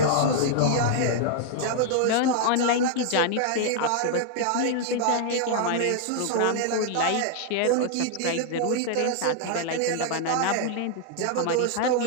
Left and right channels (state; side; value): different; both; correlation -0.01